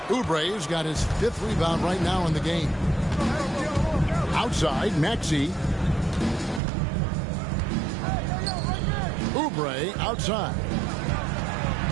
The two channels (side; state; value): left; drops out; at 6.6 s